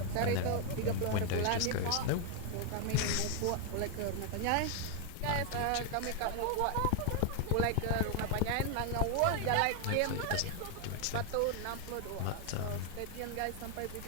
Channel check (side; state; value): both; different; correlation 0.01